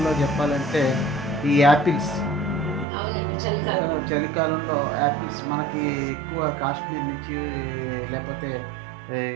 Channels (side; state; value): left; drops out; at 2.9 s